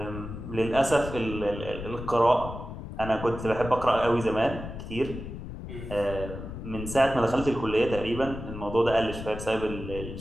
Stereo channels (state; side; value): noise; left; rumble, 9 dB below the sound